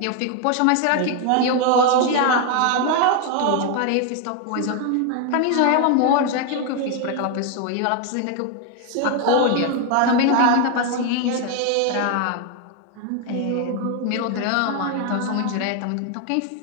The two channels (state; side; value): different; both; correlation 0.01